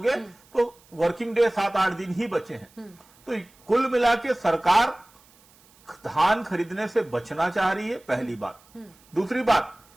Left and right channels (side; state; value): right; noise; hiss, 29 dB below the sound